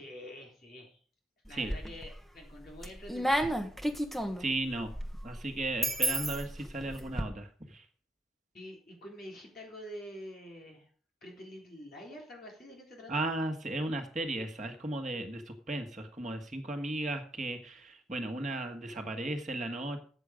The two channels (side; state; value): both; normal; correlation 0.77